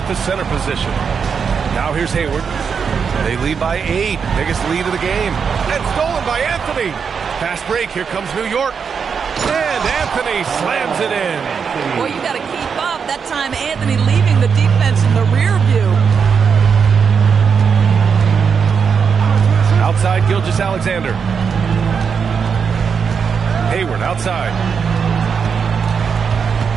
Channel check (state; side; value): quieter; left; 6.3 dB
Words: the center position. Now here's Hayward. They lead by 8, biggest lead of the game. And stolen by Anthony. Fast break, here comes New York. And Anthony slams it in. Boy, you got to keep up. That time Anthony leaving the defense in the rear view. Outside, Gilgeous-Alexander. Hayward outside.